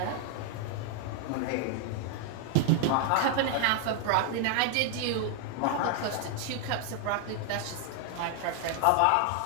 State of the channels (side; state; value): both; different; correlation 0.00